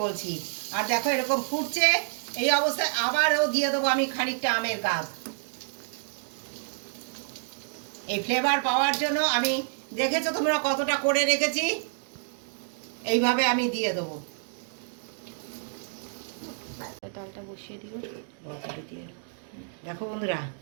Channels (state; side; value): silent; left; digital silence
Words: বলছি, আর দেখো এরকম ফুটছে, এই অবস্থায় আবারও দিয়ে দেবো আমি খানিকটা আমের গাছ। এই ফ্লেভার পাওয়ার জন্য আমি, দেখেছো তোমরা কতটা করে রেখেছি, এইভাবে আমি দিয়ে দেবো। ডালটা বসিয়ে দিও। দেখো বন্ধুরা,